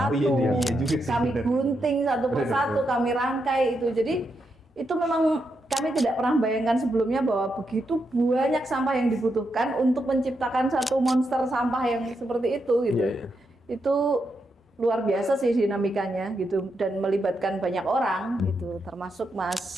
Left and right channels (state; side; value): normal; both; correlation 0.83